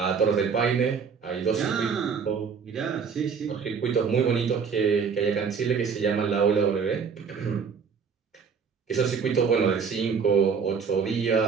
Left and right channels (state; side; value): quieter; left; 6.1 dB